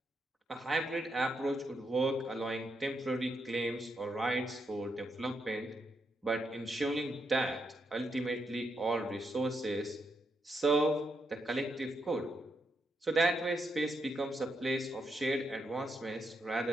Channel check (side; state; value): both; normal; correlation 0.81